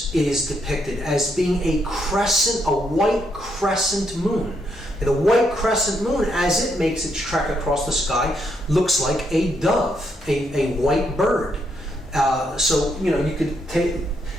is depicted as being a crescent, a white crescent moon. The white crescent moon, as it makes its trek across the sky, looks like a dove, a white bird. So, you could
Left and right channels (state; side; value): normal; both; correlation 0.76